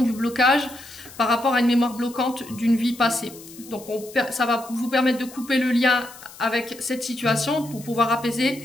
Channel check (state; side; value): noise; left; hiss, 19 dB below the sound